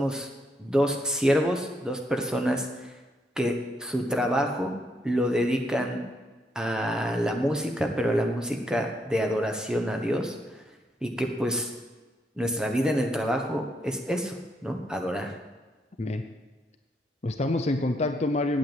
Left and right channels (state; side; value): normal; both; correlation 0.76